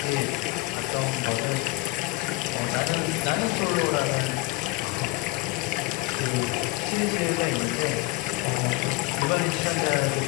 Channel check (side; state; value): right; quieter; 22.3 dB